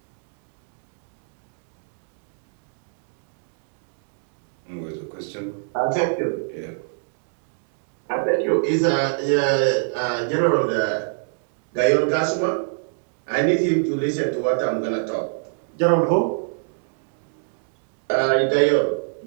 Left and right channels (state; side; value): silent; left; digital silence